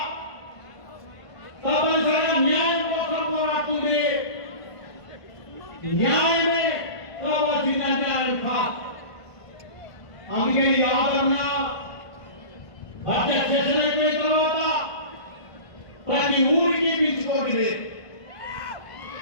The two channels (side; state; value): right; late; 1.5 ms